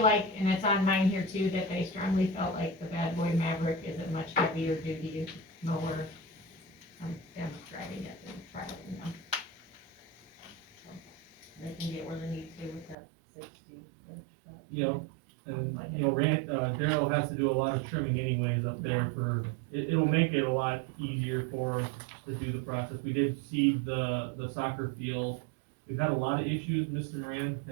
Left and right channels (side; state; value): left; drops out; at 13.0 s